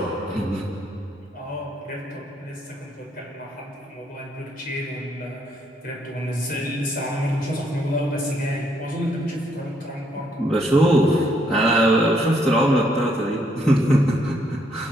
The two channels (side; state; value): both; normal; correlation 0.72